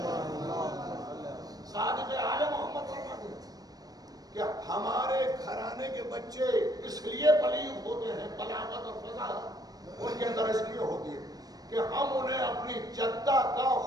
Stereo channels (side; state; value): left; late; 0.19 ms